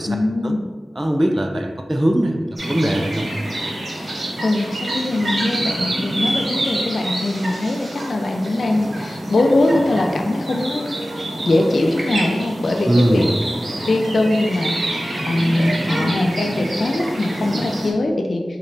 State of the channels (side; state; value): both; normal; correlation 0.95